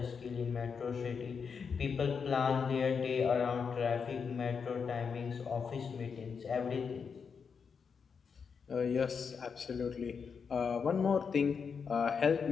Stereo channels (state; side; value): quieter; right; 6.0 dB